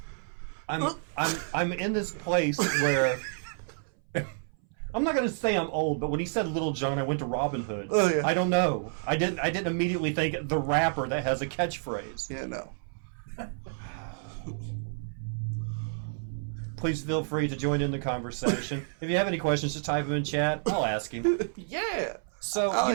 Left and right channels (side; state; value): left; silent; 58 dB below the other